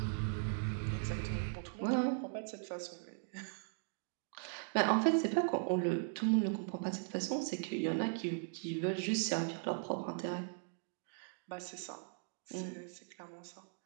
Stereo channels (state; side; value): silent; left; digital silence